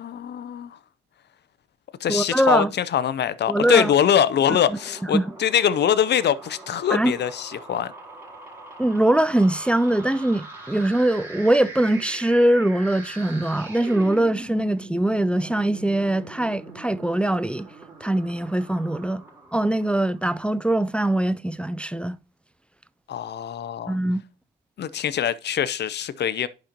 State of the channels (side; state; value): both; normal; correlation 0.65